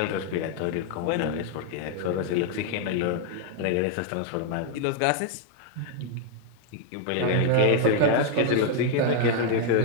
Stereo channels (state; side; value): different; both; correlation 0.00